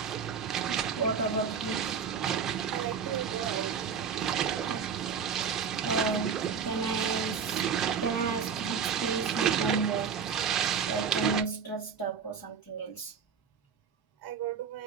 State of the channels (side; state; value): left; quieter; 6.6 dB